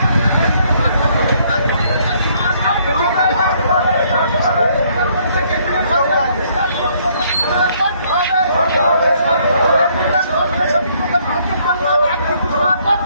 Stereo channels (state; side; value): inverted; both; correlation -0.66